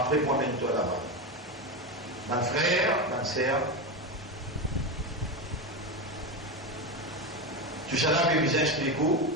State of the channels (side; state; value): both; normal; correlation 0.16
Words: promène-toi là-bas. Mon frère, ma sœur, tout ça là, je vais vous expliquer